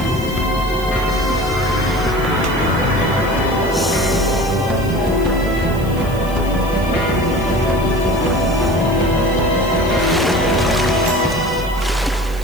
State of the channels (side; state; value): right; noise; hiss, 19 dB below the sound